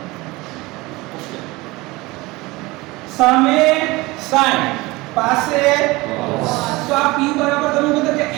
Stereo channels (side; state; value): left; quieter; 21.8 dB